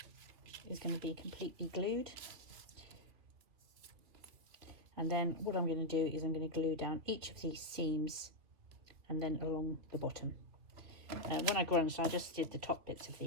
is going to be completely glued. And then what I'm going to do is I'm going to glue down each of these seams and then along the bottom. When I grunged, I just did the top bits of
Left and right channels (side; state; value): left; late; 2.8 ms